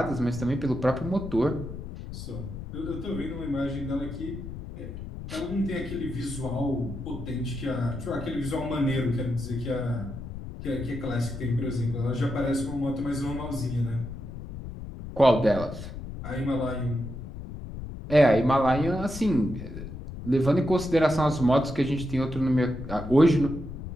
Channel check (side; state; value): left; noise; rumble, 9 dB below the sound